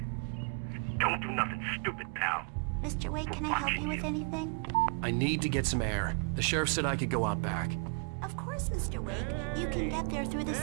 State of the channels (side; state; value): left; quieter; 36.9 dB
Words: Don't do nothing stupid, pal. Mr. Wake, can I help you with anything? I need to get some air. The sheriff said I could go out back. Of course, Mr. Wake. You can get there through the